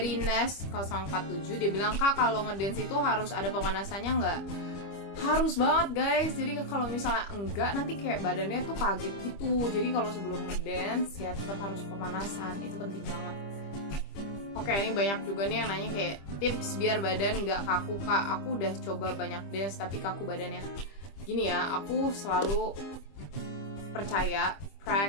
Nes047, dia bilang, Kak, kalau ngedance itu harus ada pemanasannya nggak? Harus banget guys. Jadi kalau misalnya enggak, nanti kayak badannya tuh kaget gitu. Jadi kalau sebelum ngedance ya tetap harus pemanasan, itu penting banget. Oke, ini banyak juga nih yang nanya kayak tips biar badan nggak kaku. Kak, aku udah coba banyak dance tapi kaku badannya. Gini ya, aku selalu percaya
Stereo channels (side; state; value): right; late; 25 ms